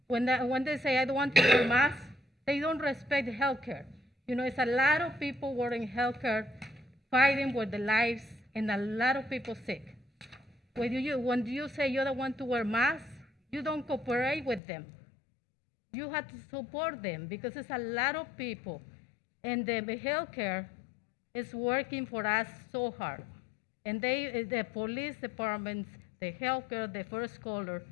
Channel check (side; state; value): right; drops out; at 14.6 s